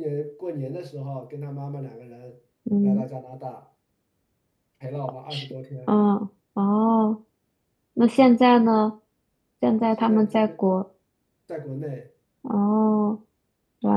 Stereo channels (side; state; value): both; identical; correlation 1.00